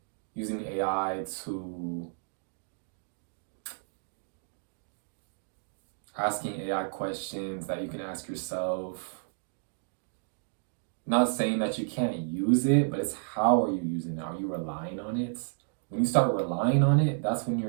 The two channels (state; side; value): silent; left; digital silence